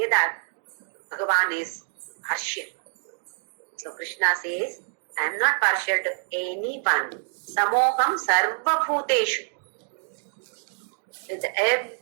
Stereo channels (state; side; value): silent; left; digital silence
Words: that Bhagavan is partial. So Krishna says, I am not partial to anyone. Samoham sarva bhuteshu. With